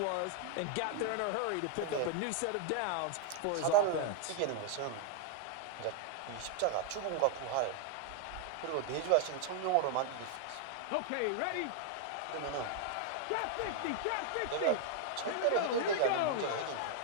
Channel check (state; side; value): different; both; correlation 0.00